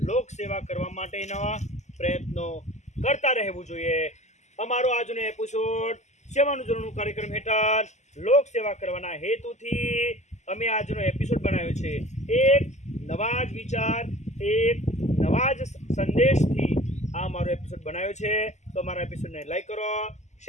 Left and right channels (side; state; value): right; late; 0.33 ms